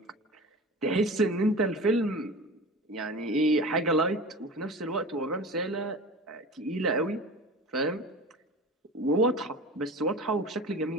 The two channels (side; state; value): both; normal; correlation 0.35